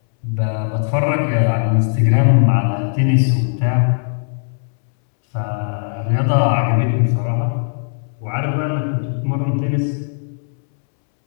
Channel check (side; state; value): right; silent; 67 dB below the other